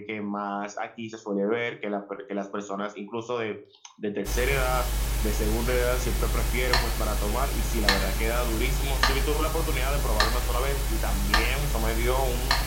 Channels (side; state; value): both; identical; correlation 1.00